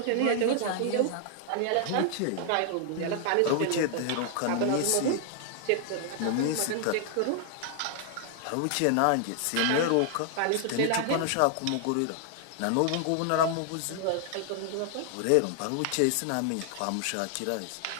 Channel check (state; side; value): different; both; correlation 0.00